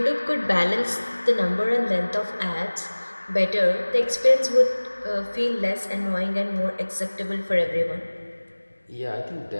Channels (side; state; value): both; inverted; correlation -1.00